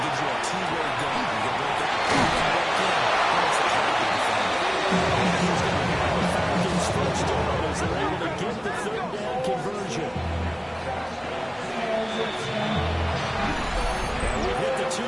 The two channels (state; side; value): identical; both; correlation 1.00